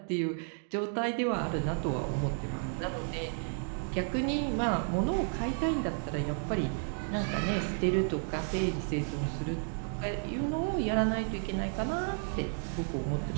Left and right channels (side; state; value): left; silent; 56 dB below the other